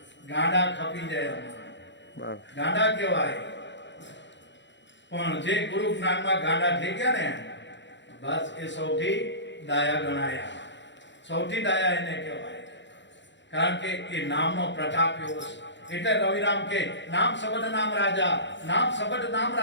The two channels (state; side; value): late; right; 0.52 ms